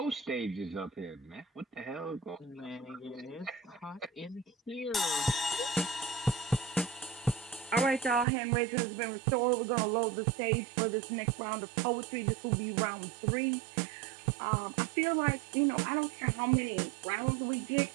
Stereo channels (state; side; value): drops out; left; at 8.2 s